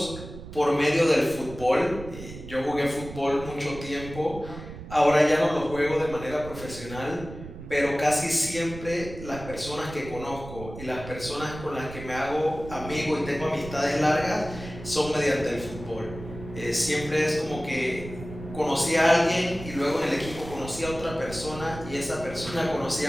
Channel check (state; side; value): noise; right; rumble, 12 dB below the sound